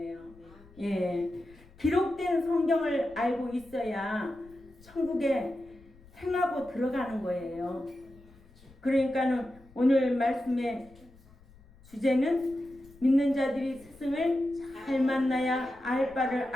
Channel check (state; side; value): noise; left; rumble, 24 dB below the sound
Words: 예. 기록된 성경을 알고 있어야 천국에 행하고 들어가는 거예요. 그러니까는 오늘 말씀의 주제는 믿는 자들이 스승을 잘 만나야 알 바를